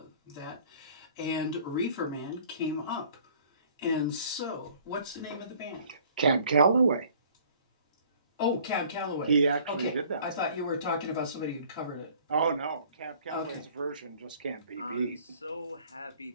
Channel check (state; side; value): inverted; both; correlation -0.54